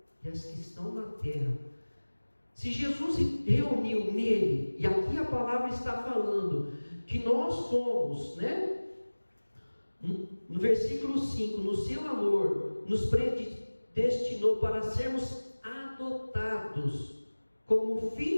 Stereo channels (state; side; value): inverted; both; correlation -1.00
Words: e as que estão na terra. Se Jesus reuniu nele, e aqui a palavra está falando, que nós somos, né? No versículo 5, no seu amor, nos predestinou para sermos adotados como